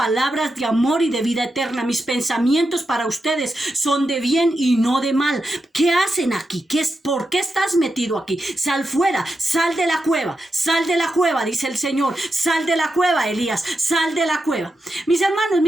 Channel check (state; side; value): normal; both; correlation 0.87